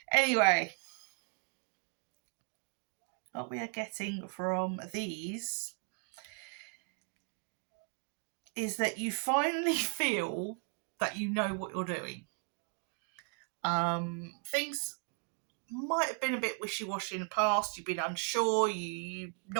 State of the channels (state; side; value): quieter; left; 38.6 dB